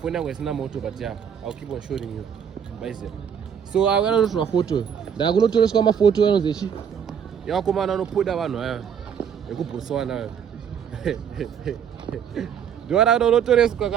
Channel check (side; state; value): left; quieter; 7.9 dB